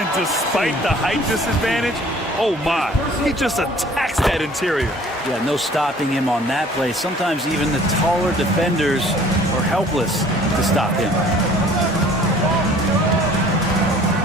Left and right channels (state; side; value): normal; both; correlation 0.52